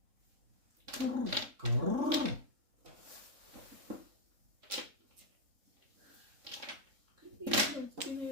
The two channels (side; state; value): left; late; 3.6 ms